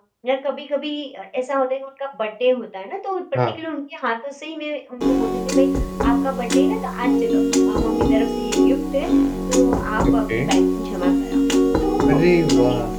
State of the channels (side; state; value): both; identical; correlation 1.00